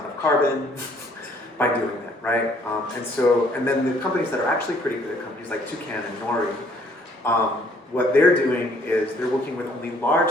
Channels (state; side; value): normal; both; correlation 0.62